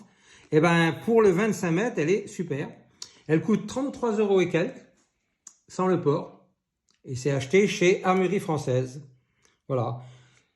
Et ben pour le 25 mètres, elle est super. Elle coûte 33 € et quelques, sans le port. Et c'est acheté chez Armurerie Française. Voilà.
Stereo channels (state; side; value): identical; both; correlation 1.00